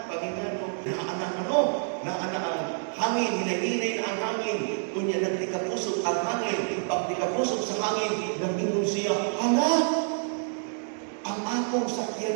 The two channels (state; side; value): silent; left; 59 dB below the other